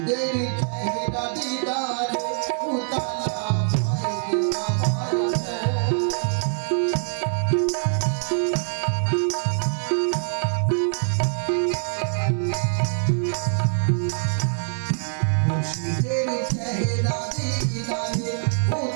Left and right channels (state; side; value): silent; left; digital silence